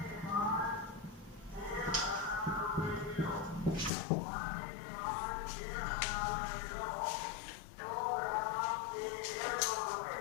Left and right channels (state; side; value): drops out; right; at 3.9 s